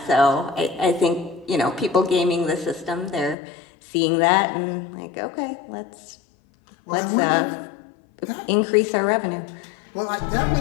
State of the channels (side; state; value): right; drops out; at 3.4 s